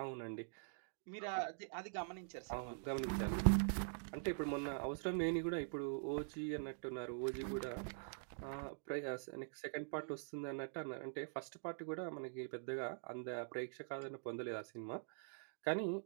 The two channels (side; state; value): left; silent; digital silence